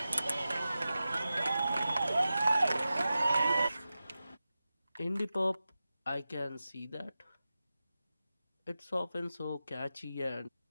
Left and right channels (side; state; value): both; inverted; correlation -0.94